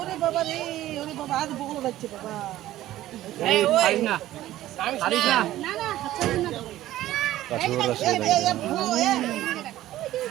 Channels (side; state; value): left; quieter; 14.5 dB